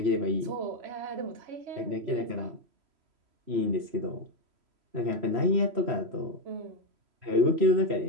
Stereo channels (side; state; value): left; late; 3.1 ms